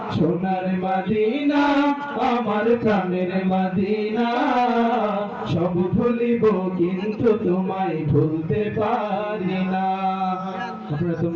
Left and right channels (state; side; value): identical; both; correlation 1.00